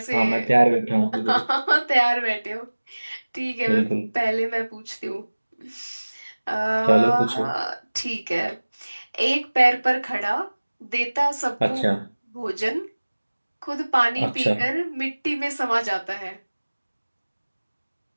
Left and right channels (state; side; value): inverted; both; correlation -1.00